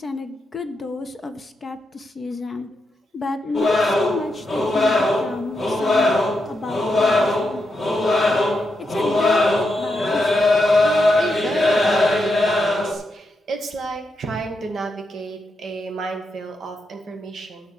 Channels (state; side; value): normal; both; correlation 0.84